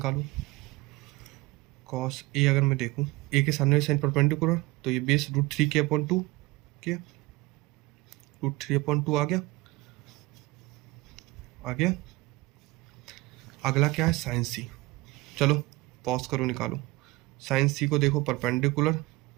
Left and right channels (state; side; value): quieter; left; 21.1 dB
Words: कॉस ए अगर मैं देखूँ, ए के सामने वाली साइड परपेंडिकुलर, तो ये बेस √3k/2 क्या, √3/2 आ गया, आ गया। अगला क्या है, साइन सी, चलो पॉज करो, निकालो। साइन सी को देखो, परपेंडिकुलर